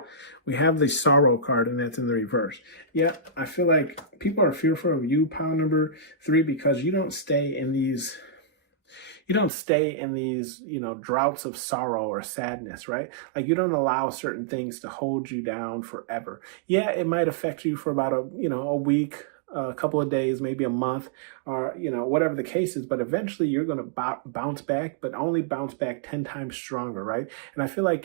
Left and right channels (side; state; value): left; drops out; at 9.5 s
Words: We have the sorrow card, and that's in the reverse. Yeah. I feel like people are fearful of you, pile number 3, because you don't stay in these, droughts of sorrow or sadness, right? Like you don't allow certain things to hold you down forever. Yeah. It might affect you for about a week, a couple of days, maybe a month, or whatever the case is, but eventually you're going to bounce back, but only bounce back 10 times stronger, right? And I feel